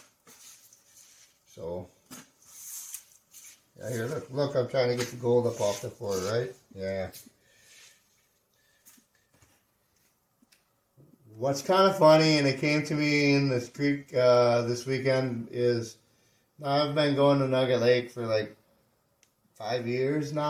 So, yeah, here, look, I'm trying to get the gold up off the floor, right? Yeah. What's kind of funny, and it came to me in this creek this weekend, is I've been going to Nugget Lake for like 5 years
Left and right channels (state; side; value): identical; both; correlation 1.00